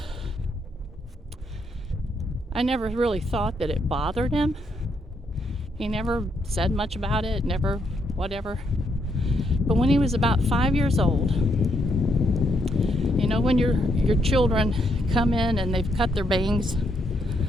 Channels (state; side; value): normal; both; correlation 0.76